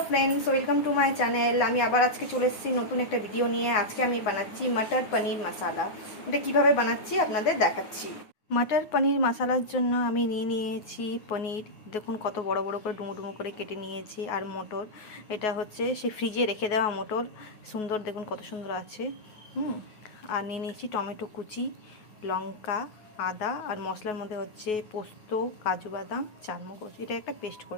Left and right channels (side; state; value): right; late; 9.5 ms